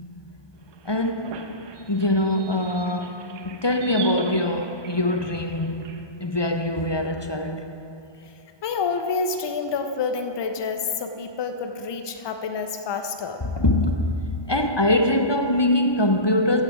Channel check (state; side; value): late; right; 1.2 ms